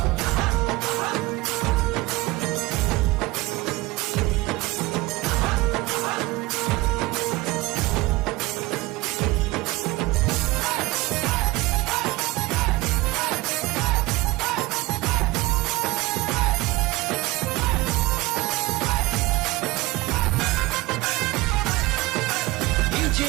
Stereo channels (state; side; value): quieter; left; 20.8 dB